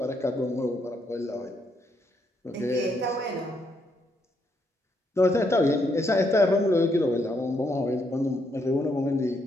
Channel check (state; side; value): normal; both; correlation 0.76